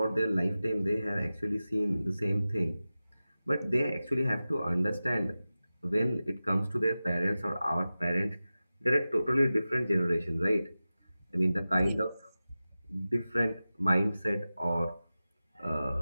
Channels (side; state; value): both; inverted; correlation -0.95